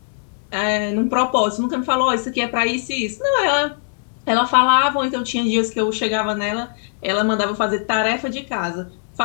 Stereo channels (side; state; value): right; silent; digital silence